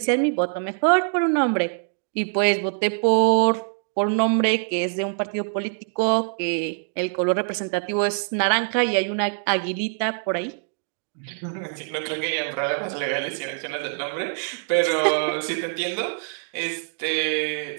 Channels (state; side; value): silent; left; 57 dB below the other